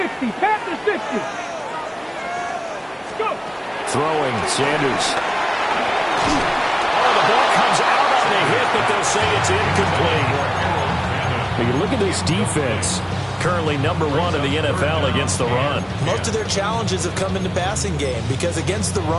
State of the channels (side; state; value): both; identical; correlation 1.00